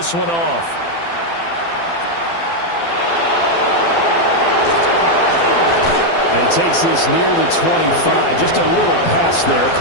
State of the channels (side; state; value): right; late; 12 ms